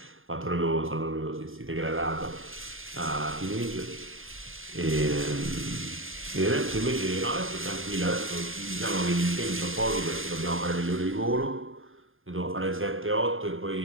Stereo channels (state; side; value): late; left; 0.59 ms